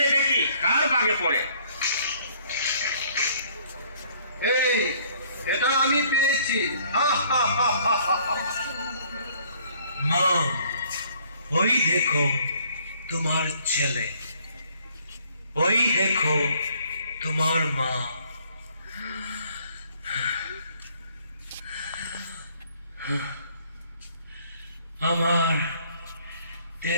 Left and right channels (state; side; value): inverted; both; correlation -0.61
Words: দেখি কার বাগে পড়ে। এই, এটা আমি পেয়েছি। মা, ওই দেখো তোমার ছেলে, ওই দেখো তোমার মা। আমার